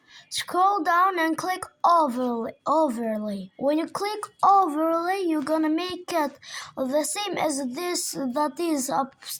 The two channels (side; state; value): both; identical; correlation 1.00